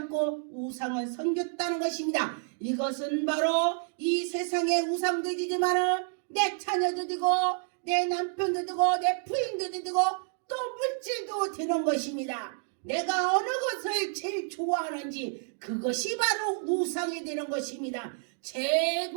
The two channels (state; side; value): silent; left; 58 dB below the other